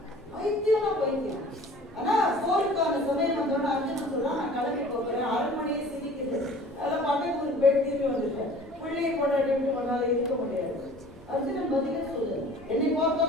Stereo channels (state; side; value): normal; both; correlation 0.47